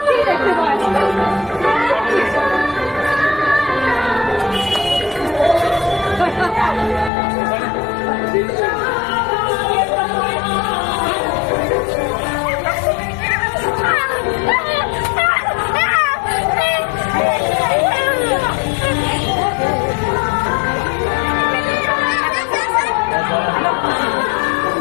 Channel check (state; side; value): drops out; right; at 7.1 s